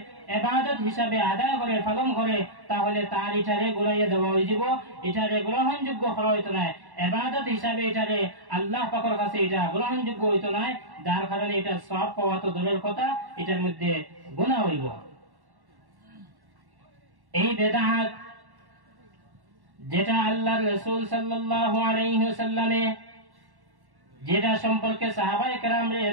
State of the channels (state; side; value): late; left; 1.1 ms